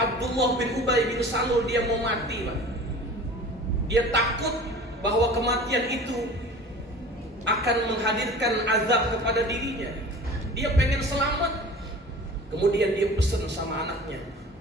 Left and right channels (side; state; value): both; normal; correlation 0.41